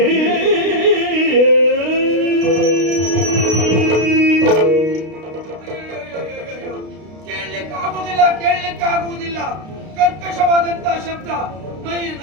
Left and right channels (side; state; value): left; late; 32 ms